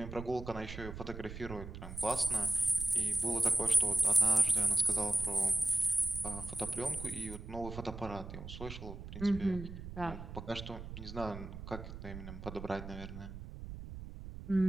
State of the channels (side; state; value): right; noise; rumble, 10 dB below the sound